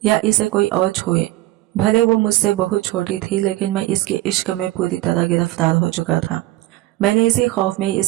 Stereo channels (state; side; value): quieter; left; 17.1 dB